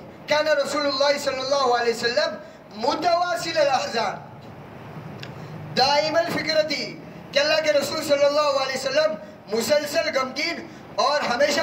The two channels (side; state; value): both; identical; correlation 1.00